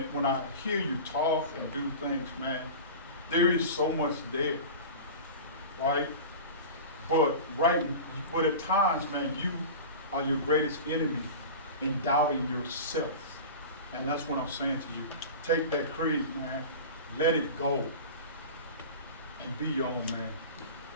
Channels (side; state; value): both; inverted; correlation -0.32